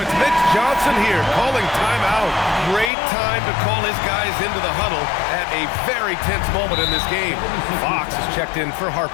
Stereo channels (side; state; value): right; drops out; at 2.9 s